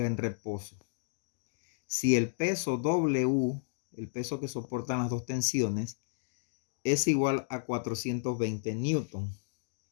en reposo. Si el peso W, el peso que soportan las dos tensiones, es igual a 420 newton.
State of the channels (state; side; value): silent; right; digital silence